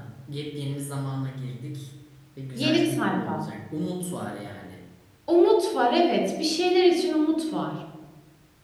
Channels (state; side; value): identical; both; correlation 1.00